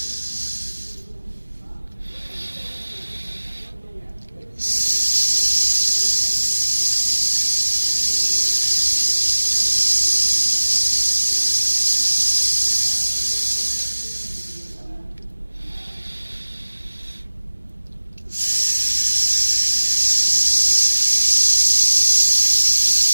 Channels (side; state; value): both; inverted; correlation -1.00